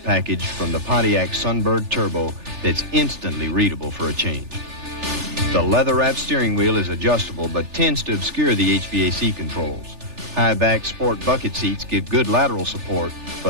package from the Pontiac Sunbird Turbo that's instantly readable for a change. The leather-wrapped steering wheel is adjustable but tends to obscure the HVAC controls. High-back sport bucket seats give good lateral support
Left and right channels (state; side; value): late; left; 3.4 ms